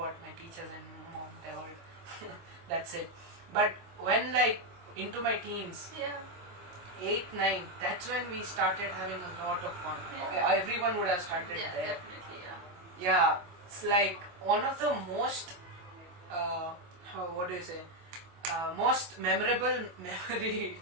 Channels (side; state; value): left; late; 25 ms